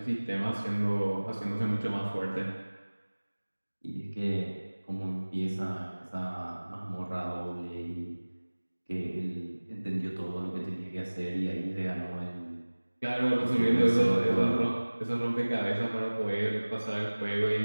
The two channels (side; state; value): both; inverted; correlation -1.00